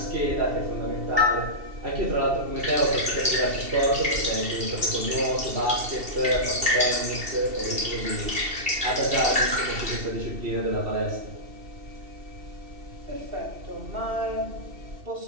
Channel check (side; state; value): left; late; 2.7 ms